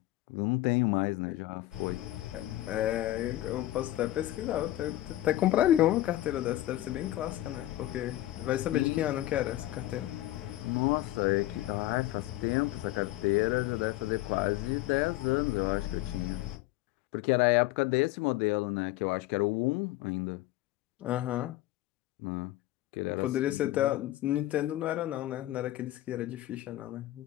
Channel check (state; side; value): quieter; right; 15.5 dB